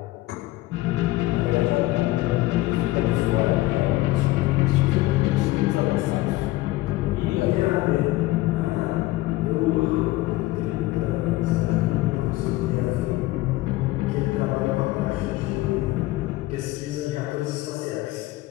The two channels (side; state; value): right; quieter; 18.2 dB